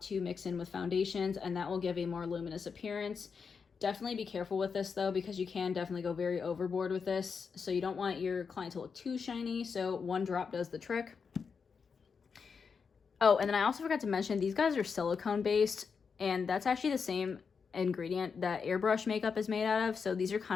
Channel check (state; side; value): quieter; right; 5.7 dB